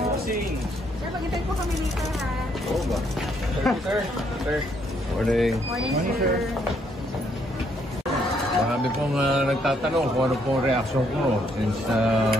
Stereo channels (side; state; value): both; normal; correlation 0.71